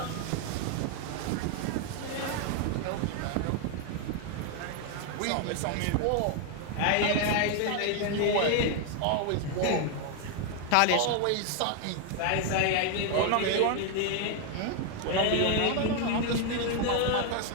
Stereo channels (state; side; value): different; both; correlation 0.01